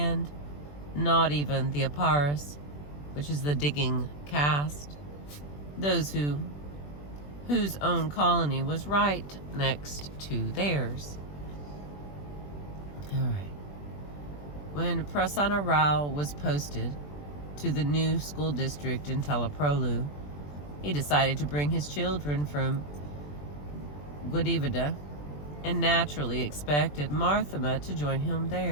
not even the Aparis, which is the digging caste, those whose own colony was right next to theirs. All right. When Prasanna Rao was posted to the new school district in Teleprolu. He decided to bring his children from Guadivida and naturally expected Marthama to join him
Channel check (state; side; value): late; right; 20 ms